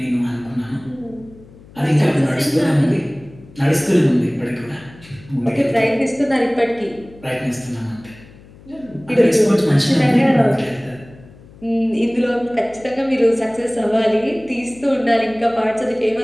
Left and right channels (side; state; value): left; noise; hum, 23 dB below the sound